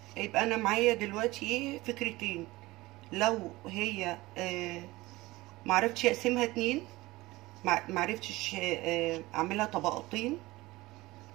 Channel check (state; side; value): quieter; left; 19.8 dB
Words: يبقى انا معايا دلوقتي ايه فكرتين. لو هي معرفتش اقسمها 2، معرفتش اعملها طبقتين،